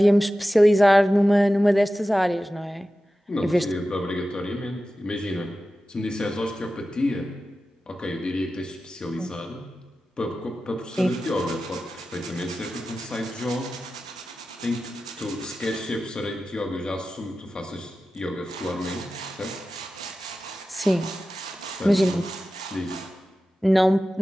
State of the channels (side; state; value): both; normal; correlation 0.94